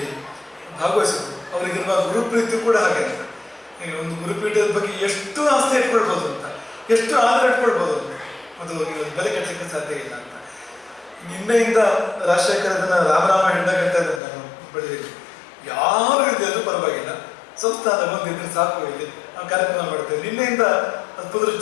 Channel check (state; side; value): drops out; right; at 14.2 s